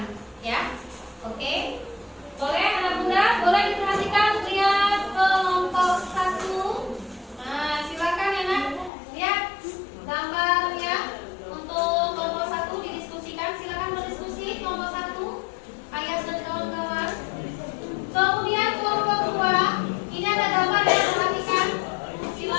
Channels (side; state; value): right; drops out; at 8.9 s